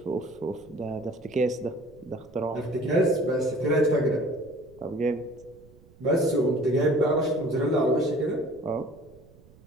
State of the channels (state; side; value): noise; right; rumble, 25 dB below the sound